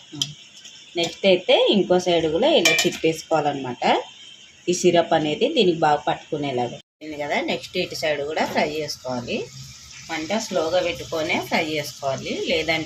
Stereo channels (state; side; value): identical; both; correlation 1.00